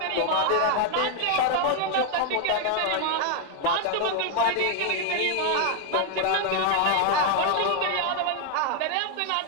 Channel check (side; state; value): both; different; correlation 0.00